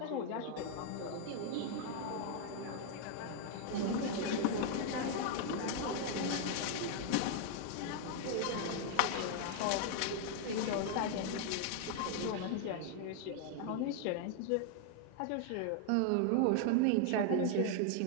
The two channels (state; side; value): different; both; correlation 0.00